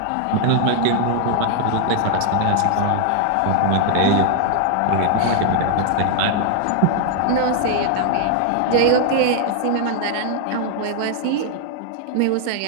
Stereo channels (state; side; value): different; both; correlation 0.00